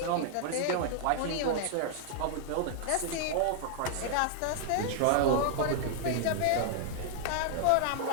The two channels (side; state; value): both; different; correlation 0.00